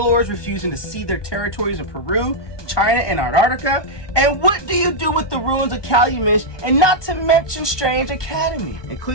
refusing to cede their territories in Peru, China, and Antarctica. And what do you do with the ruins of Calumet, and not to mention Strange Academy? And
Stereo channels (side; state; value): right; late; 1.2 ms